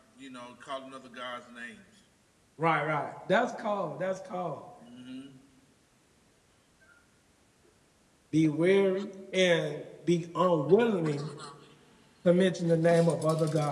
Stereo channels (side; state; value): both; identical; correlation 1.00